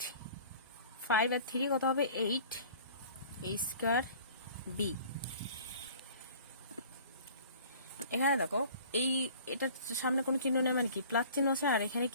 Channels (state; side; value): inverted; both; correlation -0.47